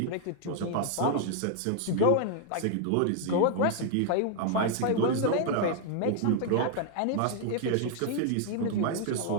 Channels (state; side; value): different; both; correlation 0.00